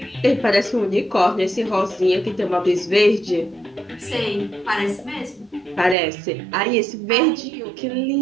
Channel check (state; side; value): drops out; left; at 6.0 s